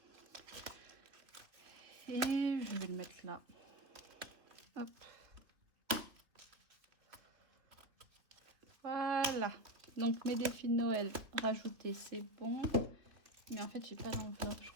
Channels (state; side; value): late; left; 2.9 ms